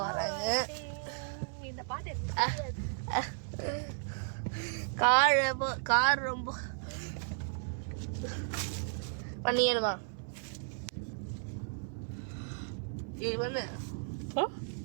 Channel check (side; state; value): left; silent; 55 dB below the other